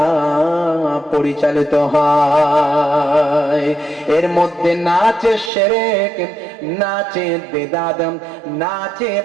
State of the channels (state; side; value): drops out; left; at 5.5 s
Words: পরিচালিত হয়। এর মধ্যে নাচে শিরক, নাচে বেদাত, নাচে